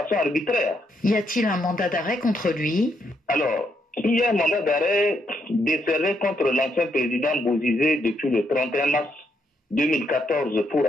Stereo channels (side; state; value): both; normal; correlation 0.76